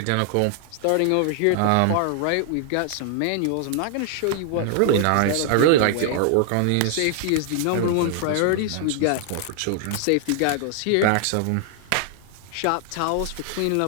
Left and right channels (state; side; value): different; both; correlation 0.00